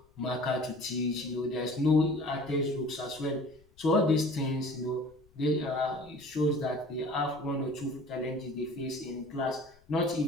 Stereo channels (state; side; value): noise; left; rumble, 29 dB below the sound